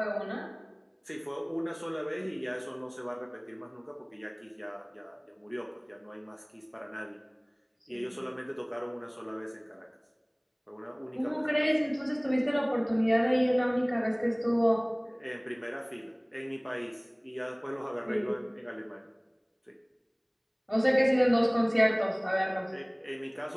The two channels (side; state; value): both; identical; correlation 1.00